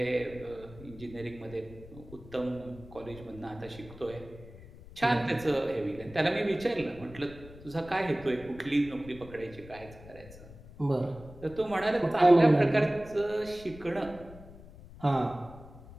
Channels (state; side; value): noise; left; rumble, 18 dB below the sound